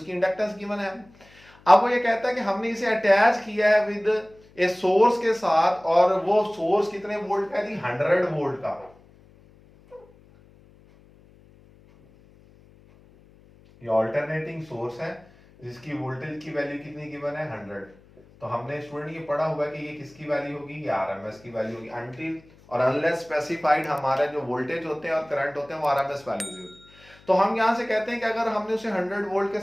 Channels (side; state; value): left; noise; hum, 27 dB below the sound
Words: इंडक्टेंस गिवन है। अब वो ये कहता है कि हमने इसे अटैच किया है विद ए सोर्स के साथ, और वो सोर्स कितने वोल्ट का है, 100 वोल्ट का। ये अल्टरनेटिंग सोर्स है जिसकी वोल्टेज की वैल्यू कितनी गिवन है 100। तो हमने स्टूडेंट ये पढ़ा हुआ कि ये किसकी वैल्यू होगी, ये आरएमएस की वैल्यू होगी। अंटिल और अनलेस स्पेसिफाइड हमारे जो वोल्टेज होते हैं और करंट होते हैं वो आरएमएस वैल्यूज होती है। तो हम यहां से कहते हैं कि अगर हमने उसे 100 वोल्ट के